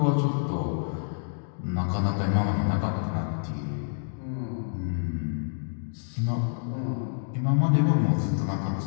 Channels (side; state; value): right; silent; digital silence